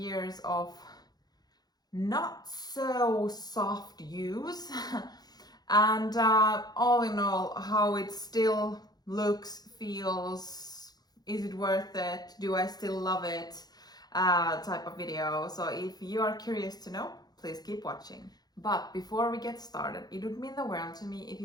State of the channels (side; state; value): right; late; 0.19 ms